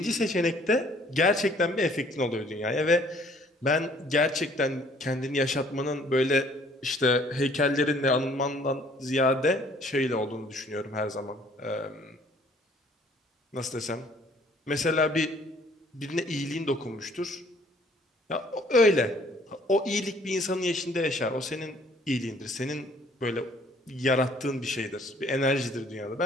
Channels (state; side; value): normal; both; correlation 0.58